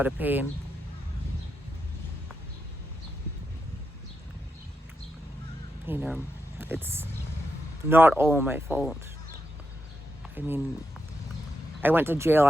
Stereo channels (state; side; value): normal; both; correlation 0.85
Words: of pain. You know, it's not all my fault. I mean, I went to jail